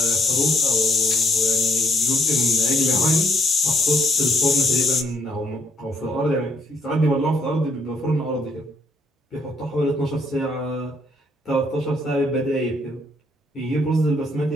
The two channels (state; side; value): normal; both; correlation 0.70